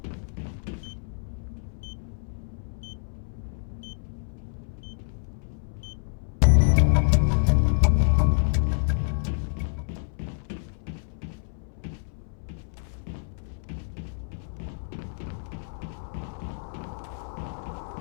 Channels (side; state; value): right; silent; 59 dB below the other